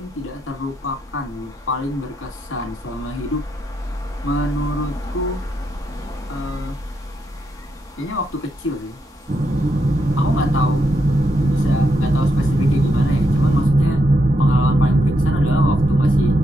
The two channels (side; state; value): both; normal; correlation 0.81